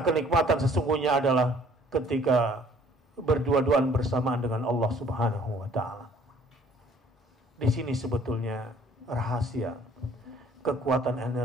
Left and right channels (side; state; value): both; normal; correlation 0.57